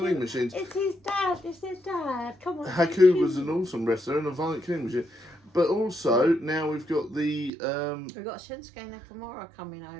machines. It's his dad, it's their dad. Come on. Haku was an awesome wrestler and a violent killing machine. But also, now we've got the... we've got Shinsuke Nakamura coming over.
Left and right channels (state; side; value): drops out; left; at 7.5 s